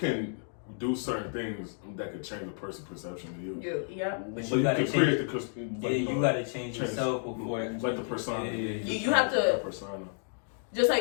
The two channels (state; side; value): silent; right; digital silence